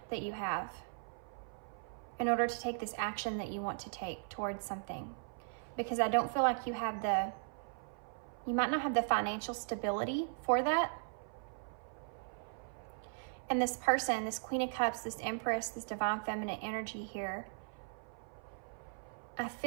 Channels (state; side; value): silent; left; 52 dB below the other